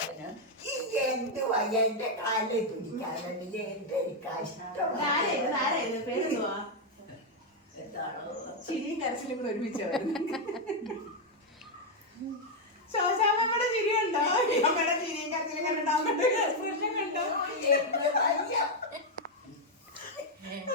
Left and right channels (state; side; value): normal; both; correlation 0.01